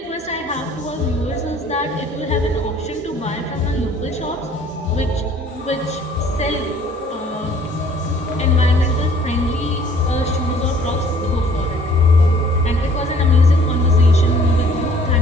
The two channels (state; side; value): normal; both; correlation 0.56